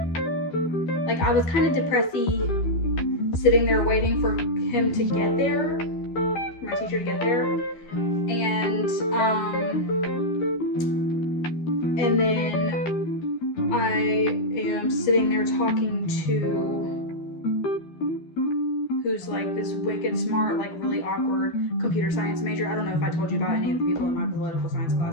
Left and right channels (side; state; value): right; late; 12 ms